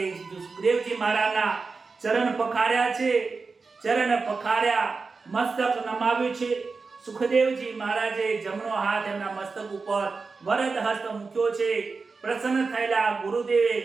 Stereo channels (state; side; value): quieter; left; 4.4 dB